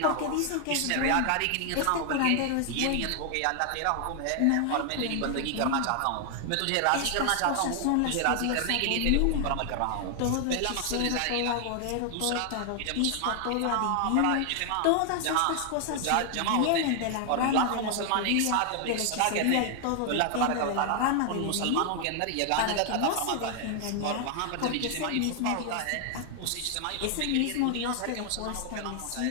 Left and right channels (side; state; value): both; different; correlation 0.00